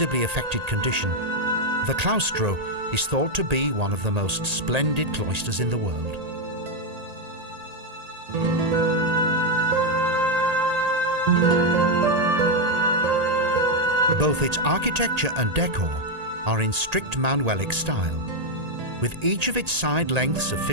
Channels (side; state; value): left; late; 1.8 ms